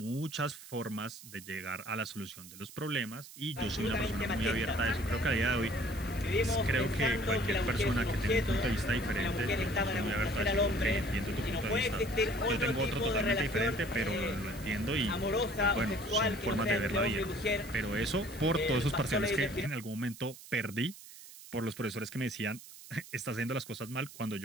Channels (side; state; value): right; noise; hiss, 17 dB below the sound